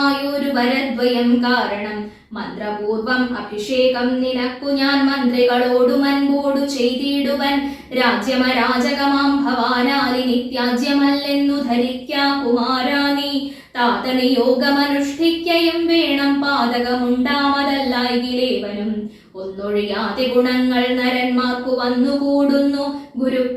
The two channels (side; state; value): both; identical; correlation 1.00